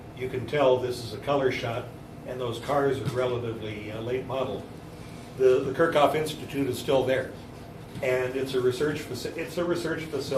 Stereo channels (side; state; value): both; identical; correlation 1.00